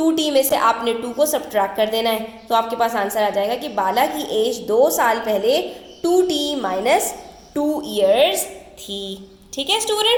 में से आपने 2 को सब्ट्रैक्ट कर देना है, तो आपके पास आंसर आ जाएगा कि बाला की एज 2 साल पहले 2t - 2 ईयर्स थी। ठीक है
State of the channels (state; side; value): identical; both; correlation 1.00